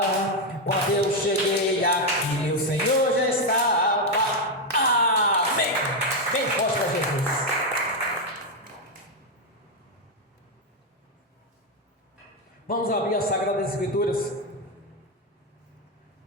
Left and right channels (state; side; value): normal; both; correlation 0.04